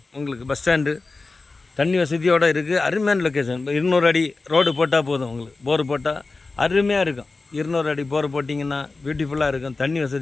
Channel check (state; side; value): quieter; right; 3.7 dB